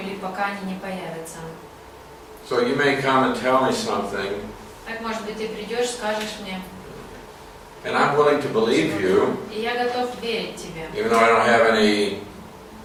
пока они не появятся. So you may come and tell me something. Так, может быть, ты придешь, скажешь мне. And I'm willing to believe you. И я готов верить тебе. Even though I don't have any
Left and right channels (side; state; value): both; identical; correlation 1.00